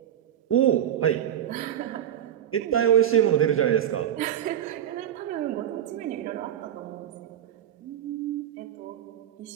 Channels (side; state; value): left; quieter; 10.8 dB